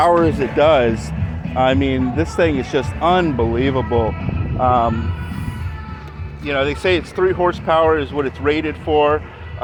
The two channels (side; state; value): both; identical; correlation 1.00